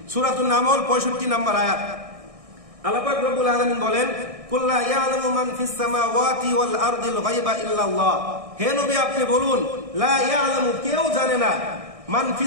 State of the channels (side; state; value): left; late; 1.6 ms